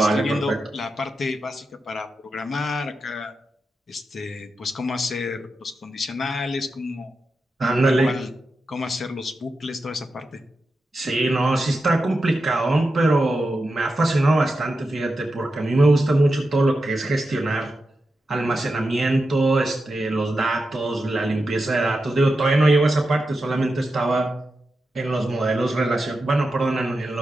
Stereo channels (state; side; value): normal; both; correlation 0.89